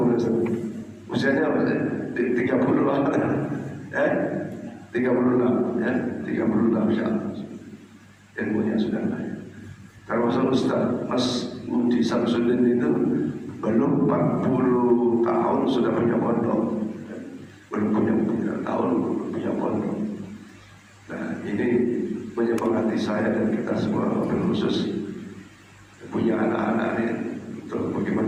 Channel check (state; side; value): identical; both; correlation 1.00